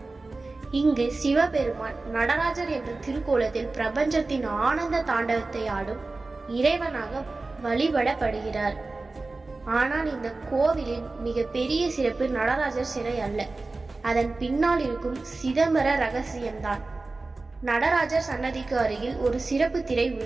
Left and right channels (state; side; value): quieter; left; 3.4 dB